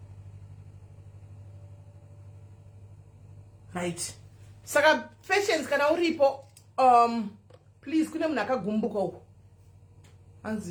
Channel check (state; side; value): identical; both; correlation 1.00